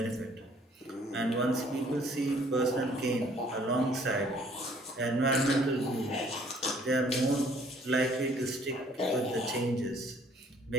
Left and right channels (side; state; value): both; normal; correlation 0.59